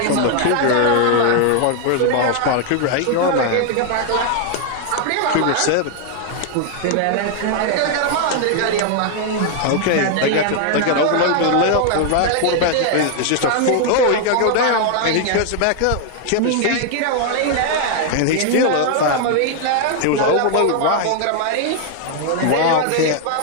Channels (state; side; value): different; both; correlation 0.00